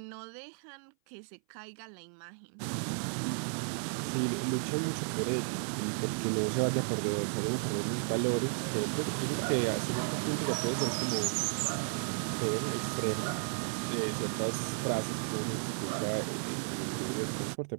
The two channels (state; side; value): silent; left; 55 dB below the other